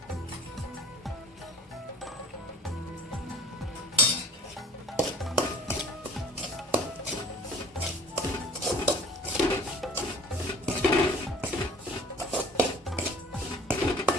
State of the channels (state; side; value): normal; both; correlation 0.48